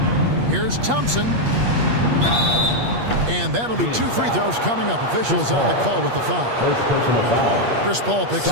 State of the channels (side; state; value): left; late; 8.4 ms